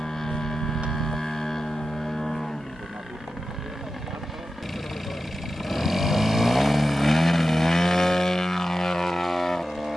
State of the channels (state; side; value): normal; both; correlation 0.93